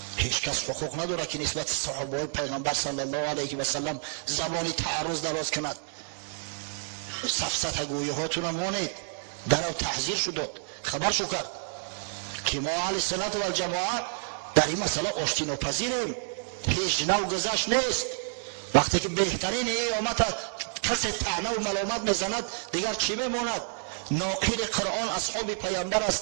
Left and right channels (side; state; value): left; silent; digital silence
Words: هیچ کس حقوق نداره که نسبت صحابه پیغمبر صلی الله علیه و سلم زبانی تعرض دراز کند. سفسطه گویی هاتون مانید. در او تحذیر شد، خبر شو کرد که ما اهل سنت و الجماعه در این مسئله آشتی ناپذیریم، هیچ نوع گذشت نیست. وقتی که بهترین ایامت کسی طعنه و ملامت میزند دیگر چی میماند؟ ناقل قرآن اصحاب پیامبر